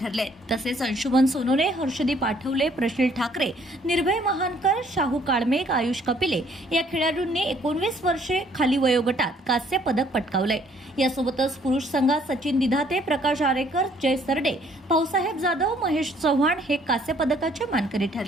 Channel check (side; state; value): both; normal; correlation 0.63